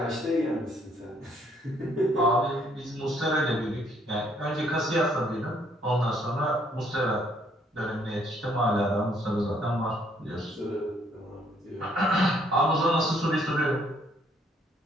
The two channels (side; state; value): both; normal; correlation 0.66